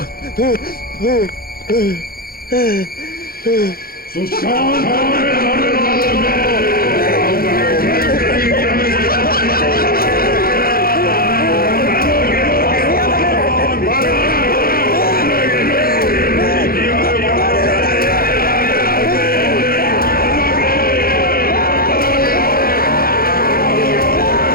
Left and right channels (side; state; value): right; late; 0.43 ms